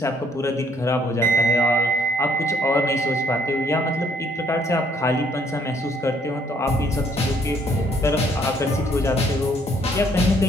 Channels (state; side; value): normal; both; correlation 0.65